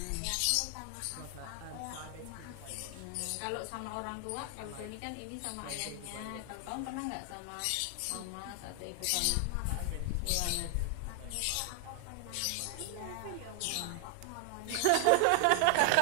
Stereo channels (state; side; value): different; both; correlation 0.00